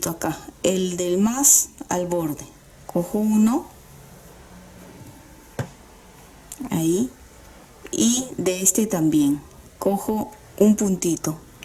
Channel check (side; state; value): both; identical; correlation 1.00